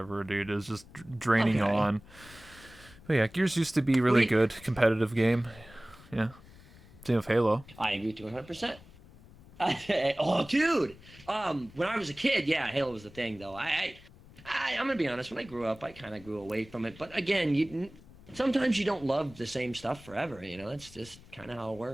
dude. It was just draining Okay. on. But yeah, Gears used to be really We. good, competitive game. Yeah, same with Halo. I agree to 100%. Oh, dude. When I was a kid, yeah, Halo was the thing, though. I'm gonna be honest. When I grew up, I kind of grew away from it. But again, sometimes you don't love the same stuff forever. You know, that's just kind of how it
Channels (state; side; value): noise; left; rumble, 22 dB below the sound